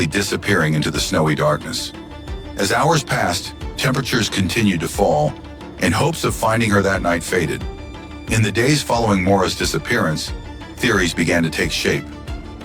disappearing into the snowy darkness. As hours passed, temperatures continued to fall, and hopes of finding her that night faded. In the days following Maura's disappearance, theories began to take shape,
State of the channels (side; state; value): both; identical; correlation 1.00